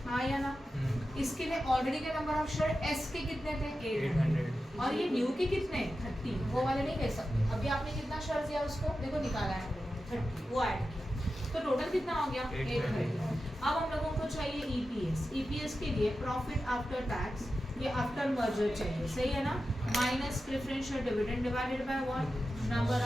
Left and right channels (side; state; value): both; normal; correlation 0.92